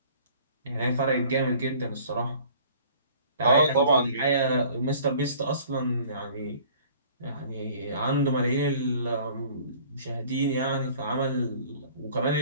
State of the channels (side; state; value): both; inverted; correlation -0.50